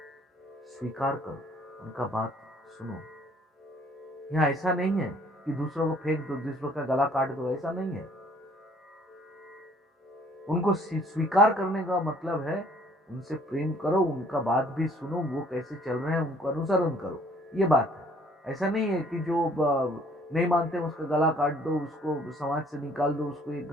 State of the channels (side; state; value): both; normal; correlation 0.58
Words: स्वीकार करो, उनका बात सुनो। यहाँ ऐसा नहीं है कि दूसरों को फेंक दो, दूसरों का गला काट दो, ऐसा नहीं है। उनको स्वीकार करने का मतलब है उनसे प्रेम करो, उनका बात भी सुनो, वो कैसे चल रहे हैं उनको अनुसरण करो, ये बात है। ऐसा नहीं है कि जो नहीं मानते उसका गला काट दो, उसको समाज से निकाल दो, उसको एक